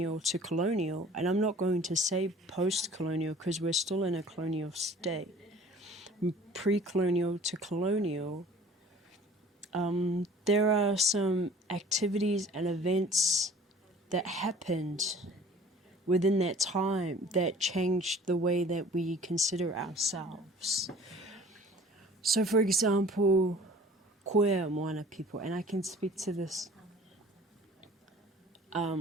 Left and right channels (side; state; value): both; normal; correlation 0.48